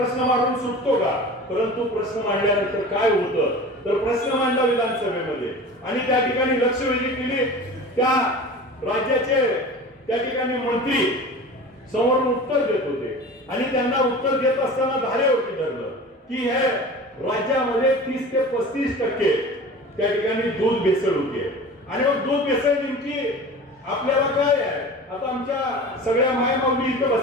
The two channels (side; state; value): both; normal; correlation 0.36